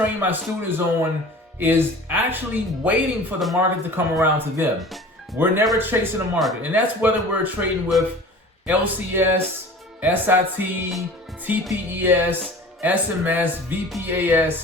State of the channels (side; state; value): both; normal; correlation 0.42